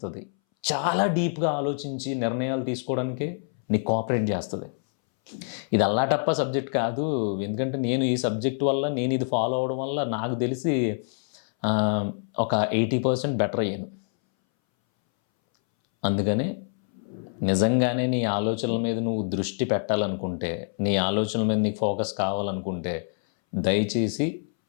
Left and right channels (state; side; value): silent; right; 61 dB below the other